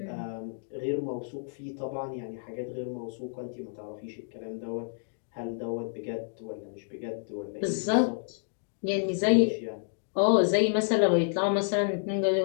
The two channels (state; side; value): silent; right; digital silence